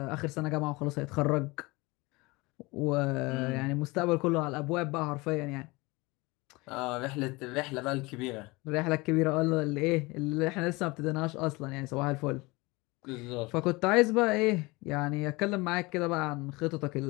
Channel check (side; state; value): right; quieter; 23.8 dB